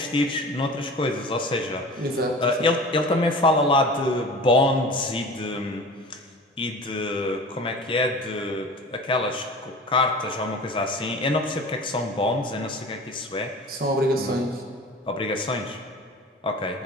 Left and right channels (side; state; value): both; normal; correlation 0.38